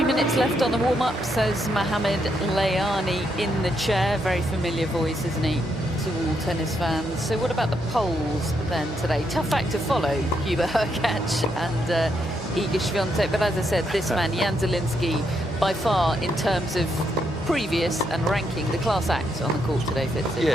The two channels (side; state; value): both; normal; correlation 0.78